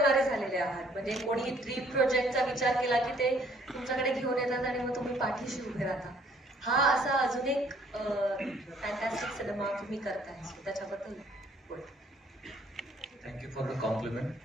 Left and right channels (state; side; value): normal; both; correlation 0.61